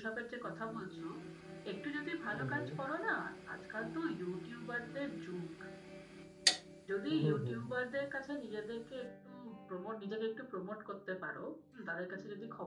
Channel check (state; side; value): identical; both; correlation 1.00